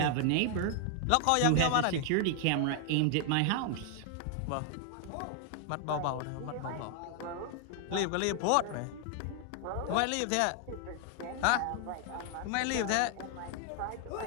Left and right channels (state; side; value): different; both; correlation 0.00